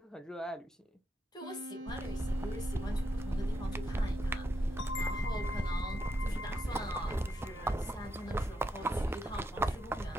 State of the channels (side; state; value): both; normal; correlation 0.81